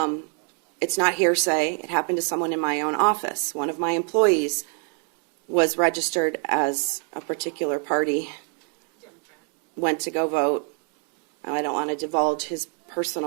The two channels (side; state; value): left; quieter; 39.9 dB